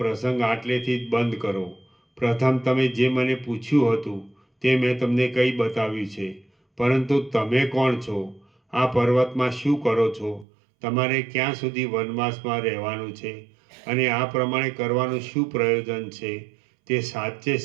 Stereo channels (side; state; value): left; drops out; at 10.5 s